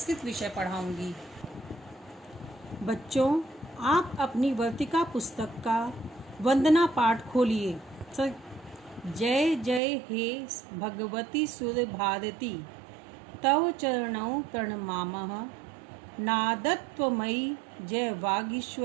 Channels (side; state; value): left; drops out; at 9.8 s